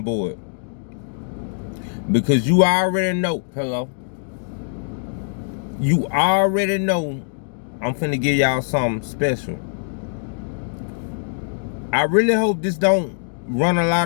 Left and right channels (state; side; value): silent; right; digital silence